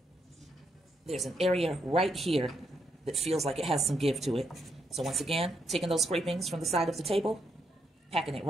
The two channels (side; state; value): both; normal; correlation 0.78